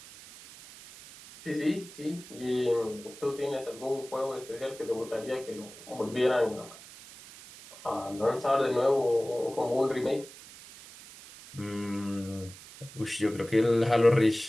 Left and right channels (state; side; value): noise; right; hiss, 18 dB below the sound